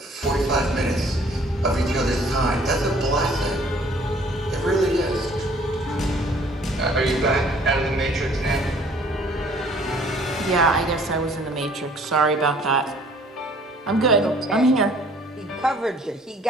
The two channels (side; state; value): both; normal; correlation 0.57